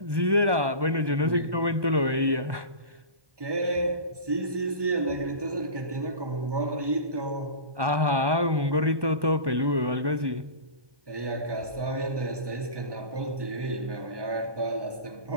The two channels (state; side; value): late; left; 1.2 ms